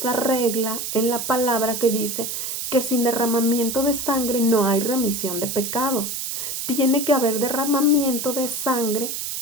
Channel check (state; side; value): noise; right; hiss, 4 dB below the sound